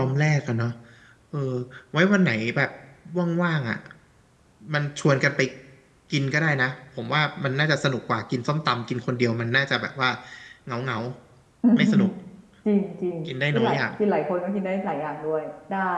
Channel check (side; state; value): both; identical; correlation 1.00